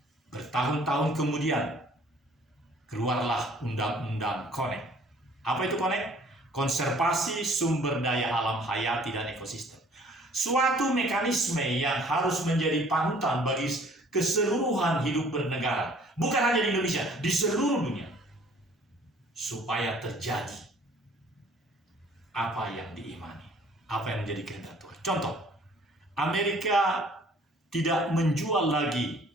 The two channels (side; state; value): both; normal; correlation 0.56